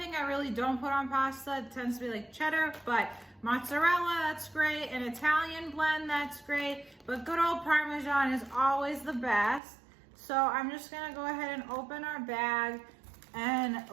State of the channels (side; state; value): left; drops out; at 9.6 s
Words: I really don't put on pasta tends to be like cheddar, but mozzarella, that's great. An Italian blend, that's great. But good old Parmesan is always the best. So I'm just gonna go ahead and open our bag and